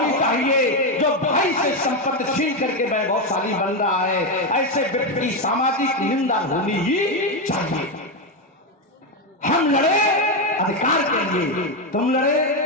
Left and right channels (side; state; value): both; normal; correlation 0.08